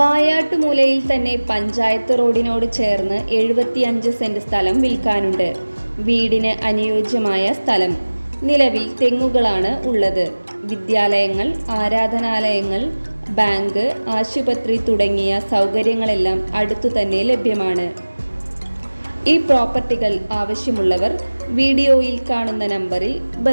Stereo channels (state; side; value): inverted; both; correlation -1.00